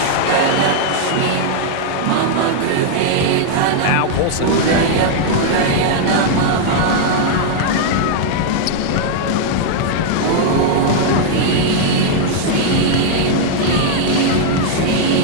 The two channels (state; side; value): different; both; correlation -0.01